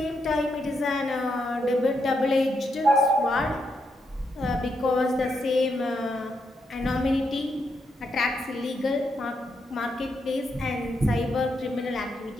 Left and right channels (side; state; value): both; normal; correlation 0.80